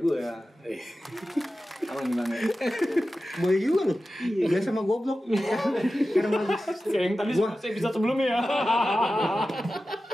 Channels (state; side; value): normal; both; correlation 0.94